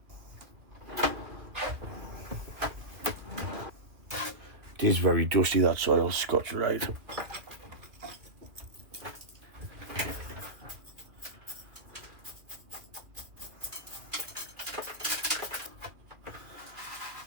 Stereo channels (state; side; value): late; left; 2.1 ms